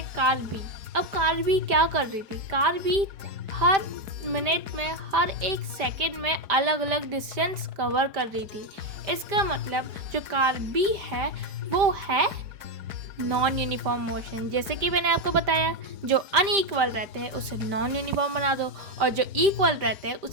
कार भी। अब कार भी क्या कर रही थी? कार भी हर मिनट में, हर एक सेकंड में अलग अलग डिस्टेंस कवर कर रही थी। इसका मतलब जो कार भी है वो है नॉन यूनिफॉर्म मोशन। जैसे कि मैंने आपको बताया, जो अनइक्वल रहते हैं उसे नॉन यूनिफॉर्म बना दो और जो इक्वल रहते हैं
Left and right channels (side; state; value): left; late; 5.1 ms